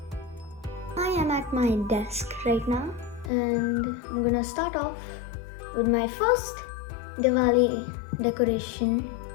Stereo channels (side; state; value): right; drops out; at 3.3 s